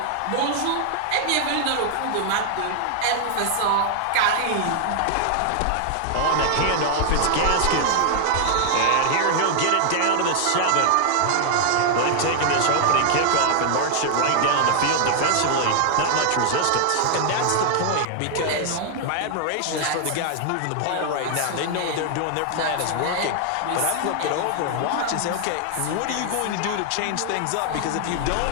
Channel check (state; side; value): different; both; correlation 0.00